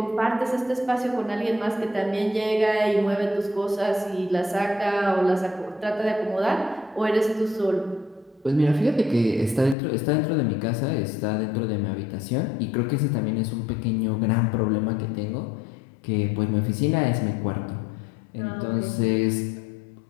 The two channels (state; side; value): drops out; right; at 9.8 s